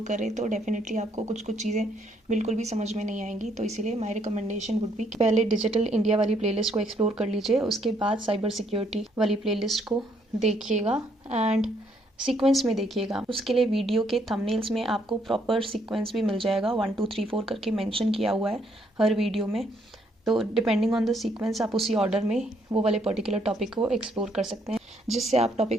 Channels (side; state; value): both; normal; correlation 0.70